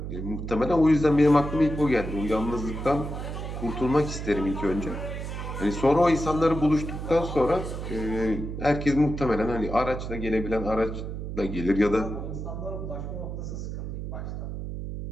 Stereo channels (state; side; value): noise; right; hum, 6 dB below the sound